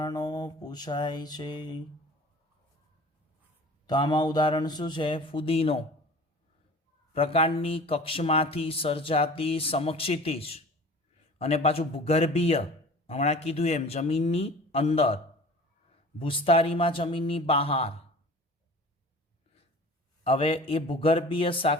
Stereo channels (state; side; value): normal; both; correlation 0.42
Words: પૂછાય છે. તો આમાં ઉદાહરણ શું છે? ફુદીનો. પ્રકાંડની કક્ષમાંથી સર્જાતી સમક્ષિતિજ અને પાછું ભૂગર્ભીય, હમણાં કીધું એમ જમીનની અંદર, ભૂસ્તારીમાં જમીનની બહાર. હવે એ ભૂગર્ભીય